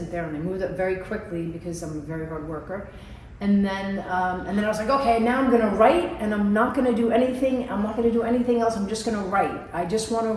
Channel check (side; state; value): both; identical; correlation 1.00